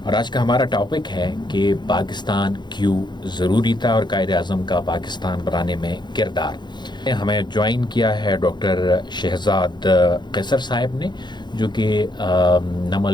और आज का हमारा टॉपिक है कि पाकिस्तान क्यों ज़रूरी था और कायद आज़म का पाकिस्तान बनाने में किरदार। हमें ज्वाइन किया है डॉक्टर शहजाद कैसर साहब ने, जो कि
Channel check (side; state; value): right; late; 0.21 ms